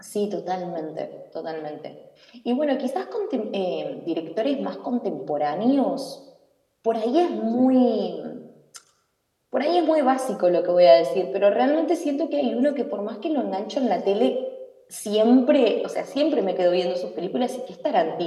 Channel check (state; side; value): identical; both; correlation 1.00